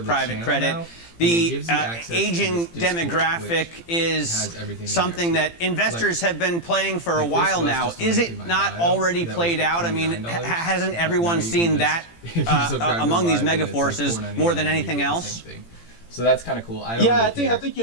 the private channel credit. now, and it The gives you access to aging this Discord, demographic which is has everything in there, something too. that investors have been playing for a like this while was now. just Is linked it in my not bio. already That was played for out? I mean, $29. hasn't Now everyone you can seen just- that if you subscribe to among these Live, then mega it's like forces $4.99 more than and you anything get the else? same thing. So that's kind of cool. I don't Yeah, really I think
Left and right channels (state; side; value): late; right; 18 ms